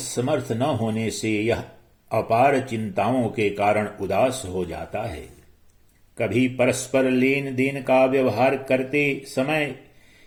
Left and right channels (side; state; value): both; identical; correlation 1.00